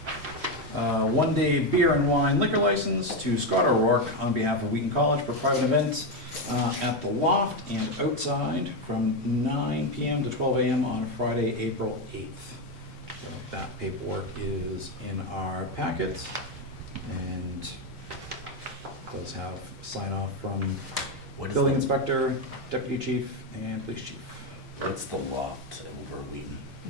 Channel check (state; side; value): normal; both; correlation 0.09